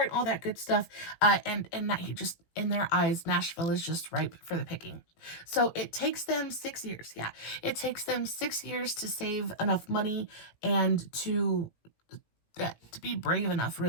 and all that good stuff. And that he just, in their eyes, Nashville is just ripe for the picking. So it takes them 6 years. Yeah, it takes them 6 years to save enough money and to be brave enough,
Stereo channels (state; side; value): late; right; 18 ms